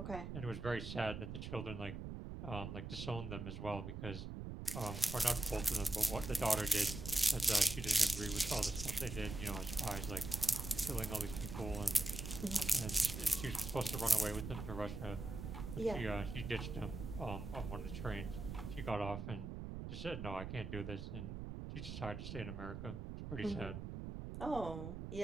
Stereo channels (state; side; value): noise; right; rumble, 6 dB below the sound